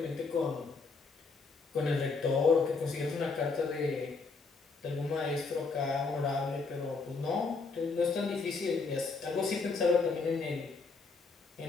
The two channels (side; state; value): right; quieter; 4.2 dB